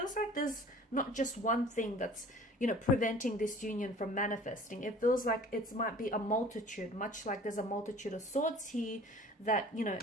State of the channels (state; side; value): normal; both; correlation 0.47